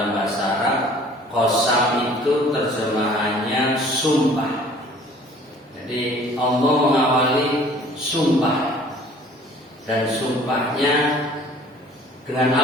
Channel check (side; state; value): both; normal; correlation 0.52